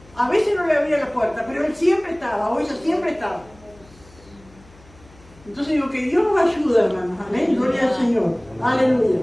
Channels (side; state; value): left; noise; hum, 25 dB below the sound